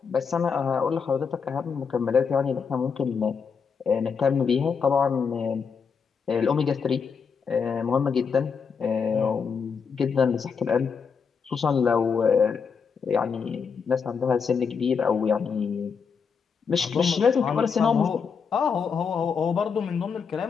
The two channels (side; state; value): right; quieter; 6.0 dB